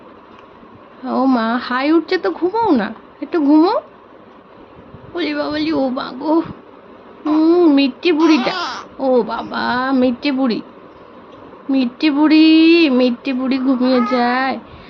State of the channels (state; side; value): identical; both; correlation 1.00